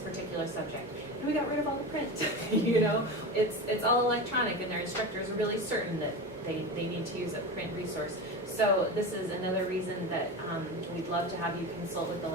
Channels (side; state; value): both; normal; correlation 0.25